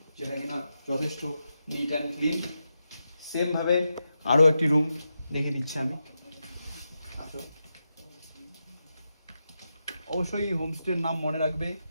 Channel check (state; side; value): inverted; both; correlation -0.88